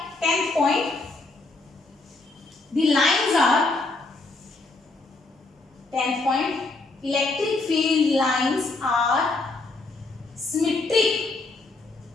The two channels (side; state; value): right; quieter; 3.3 dB